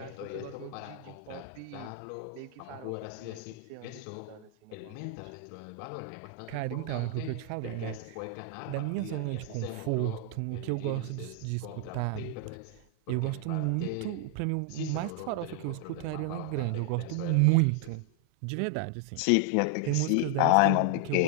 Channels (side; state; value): both; different; correlation 0.00